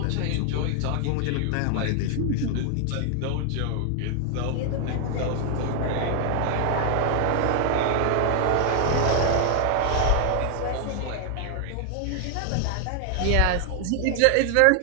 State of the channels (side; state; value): both; different; correlation 0.00